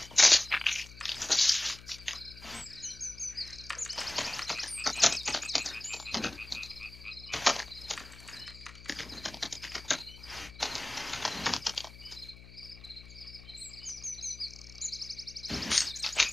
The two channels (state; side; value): noise; left; hum, 17 dB below the sound